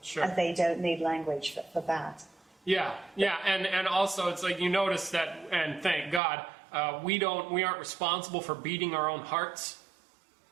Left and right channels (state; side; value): drops out; left; at 6.2 s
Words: Sure. And they don't need language for that. Yeah, and also it's like, you notice that, and thank God, we aren't responsible for beating our own hearts.